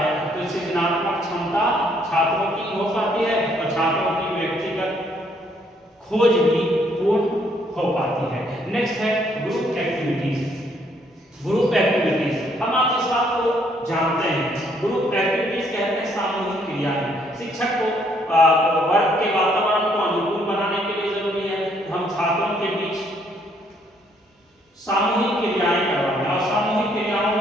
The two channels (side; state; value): both; normal; correlation 0.68